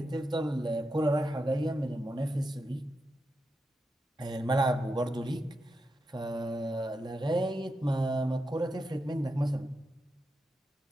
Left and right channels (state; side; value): normal; both; correlation 0.87